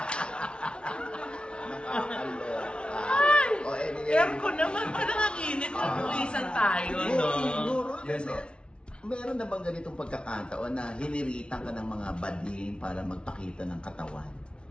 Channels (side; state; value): right; late; 0.057 ms